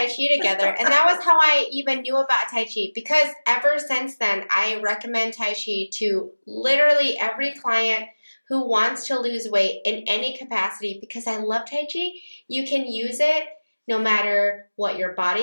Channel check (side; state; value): both; inverted; correlation -1.00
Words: Chi together, and that was how I even knew about Tai Chi, because ever since then, I recommend Tai Chi to literally every client who wants to lose weight in any capacity, because I love Tai Chi. You can use it no matter what your